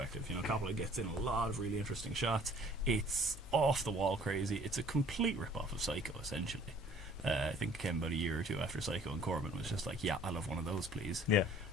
Coppola gets in a lot of really interesting shots. It's off-the-wall crazy. It's a complete rip-off of Psycho, essentially. I think it came about a year or two after Psycho, and Corman was just like, yeah, I'll have one of those, please. Yeah.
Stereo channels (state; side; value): normal; both; correlation 0.54